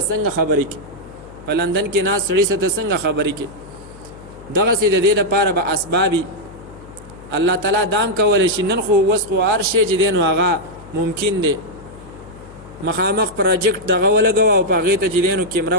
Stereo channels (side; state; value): left; noise; hum, 20 dB below the sound